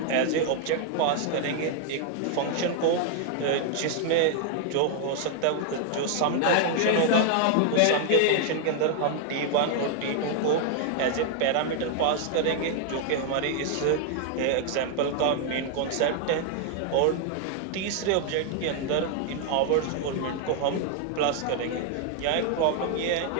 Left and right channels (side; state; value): both; different; correlation 0.00